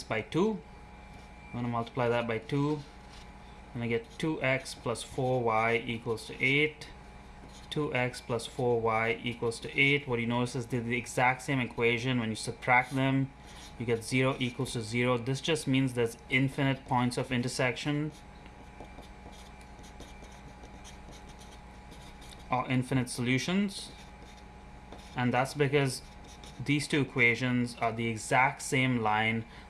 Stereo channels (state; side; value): identical; both; correlation 1.00